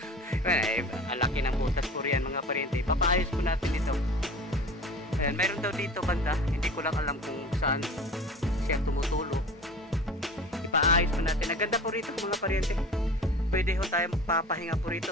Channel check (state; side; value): normal; both; correlation 0.38